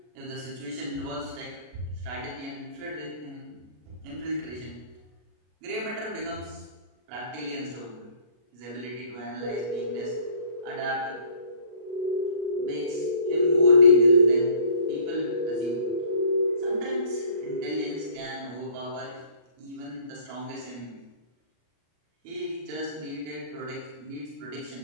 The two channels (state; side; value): late; left; 33 ms